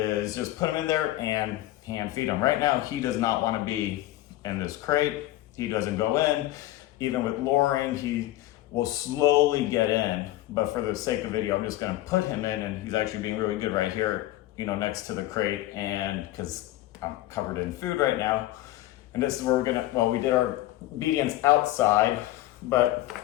just put him in there and hand feed him. Right now, he does not want to be in this crate. He doesn't go in. Even with luring, he will slowly get in. But for the sake of video, I'm just going to put him in, and he's actually being really good right here, next to the crate, and because I'm covered in food right now. And this is where we did our obedience outside, but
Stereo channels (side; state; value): right; quieter; 15.8 dB